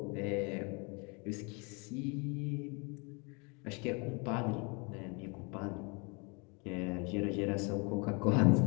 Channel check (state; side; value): quieter; right; 32.0 dB